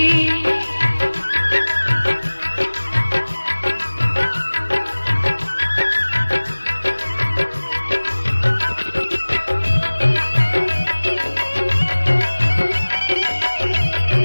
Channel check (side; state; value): both; inverted; correlation -1.00